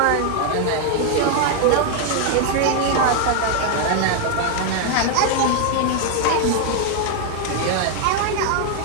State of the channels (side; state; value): both; different; correlation 0.00